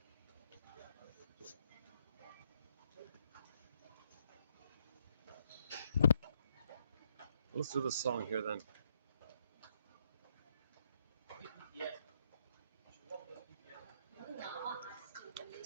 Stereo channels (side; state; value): both; inverted; correlation -0.75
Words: Let's do the song here then.